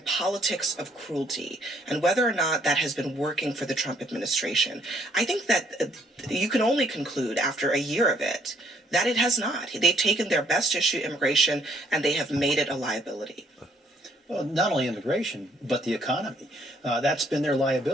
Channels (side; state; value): both; normal; correlation 0.66